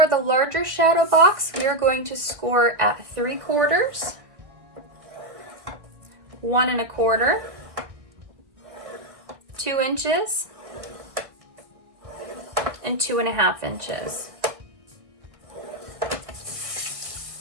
the larger shadow box, we are going to score at 3/4, 1 1/4, 2 inches, and 2 1/2 inches.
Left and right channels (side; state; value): left; late; 1.5 ms